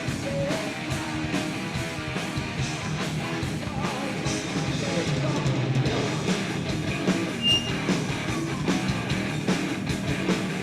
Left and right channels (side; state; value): both; identical; correlation 1.00